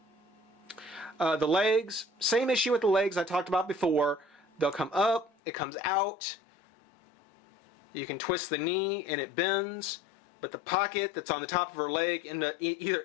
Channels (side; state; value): right; drops out; at 5.3 s